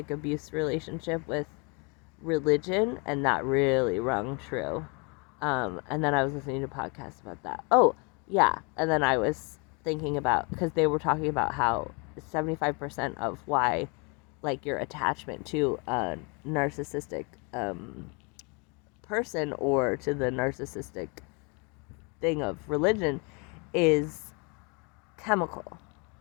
abuse relationship with religion, and that really rung true. And then I was listening to podcasts about that. Oh, yeah. And then I was thinking about, because they were talking about how 75% of why, like, your attachment to a narcissistic person or to the narcissistic thing of religion is chemical,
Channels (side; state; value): right; quieter; 32.6 dB